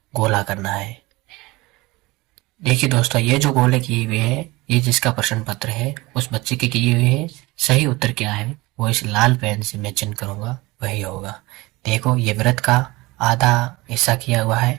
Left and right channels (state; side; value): quieter; left; 21.7 dB